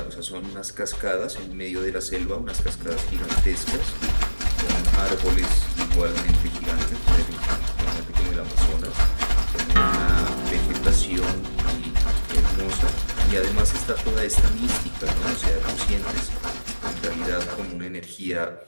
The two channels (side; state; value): both; inverted; correlation -1.00